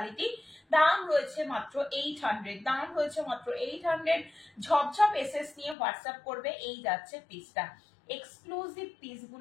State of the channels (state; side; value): drops out; right; at 5.8 s